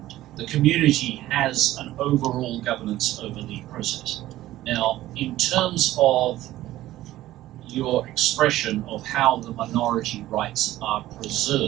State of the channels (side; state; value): left; quieter; 15.1 dB